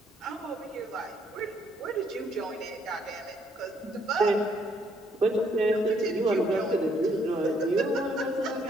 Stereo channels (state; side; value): normal; both; correlation 0.69